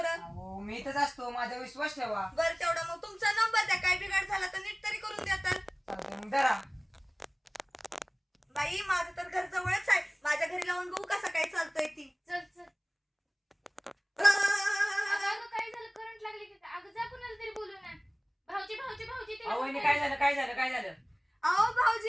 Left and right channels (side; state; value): both; identical; correlation 1.00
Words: अहो मी इथंच असतो, माझा विश्वास ठेवा. बरं तेवढा मग तुमचा नंबर द्या, काय बिघाड झाला तर नीट तरी करून द्या तर. चालतंय, मग धरा. बाई माझं तर घर जवळच आहे, माझ्या घरी लावून बघू कसं काय चालतंय ती. चल अगं काय झालं, करंट लागली की काय? अगं जा कुणाला तरी बोलू ना. भाऊजी तिला अहो काय झालं? अहो